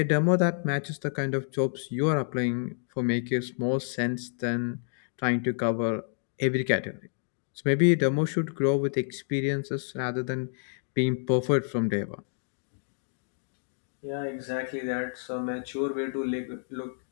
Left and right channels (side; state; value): right; silent; digital silence